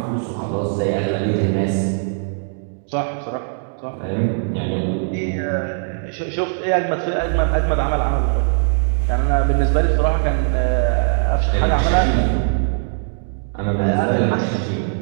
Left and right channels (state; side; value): silent; left; digital silence